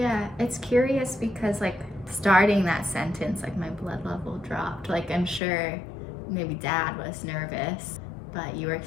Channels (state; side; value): drops out; right; at 5.4 s